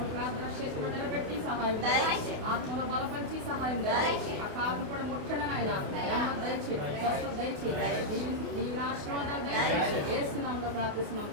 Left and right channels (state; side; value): late; left; 29 ms